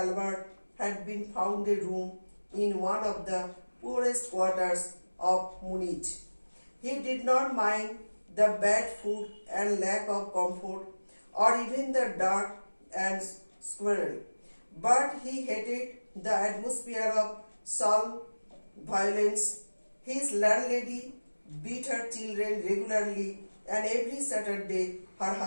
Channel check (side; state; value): both; inverted; correlation -1.00